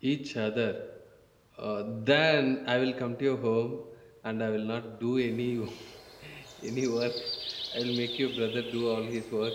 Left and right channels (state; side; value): identical; both; correlation 1.00